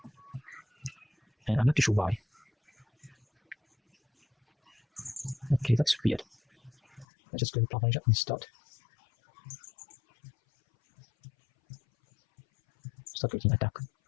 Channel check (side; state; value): right; drops out; at 7.1 s